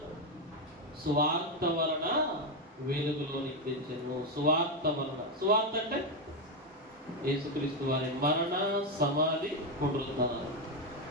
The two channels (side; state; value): both; normal; correlation 0.07